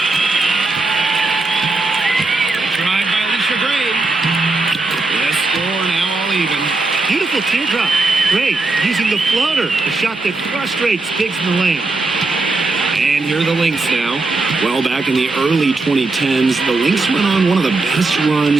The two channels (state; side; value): quieter; left; 3.4 dB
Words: Drive by Alicia Gray. The score now all even. Beautiful teardrop. Great. Using the floater, a shot that frustrates Biggs in the lane. And here are the Lynx now. Well, back in the early 2010s, the Lynx went on one of the best